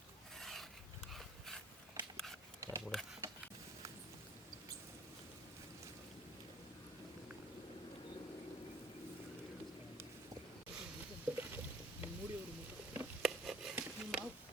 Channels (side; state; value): both; normal; correlation 0.53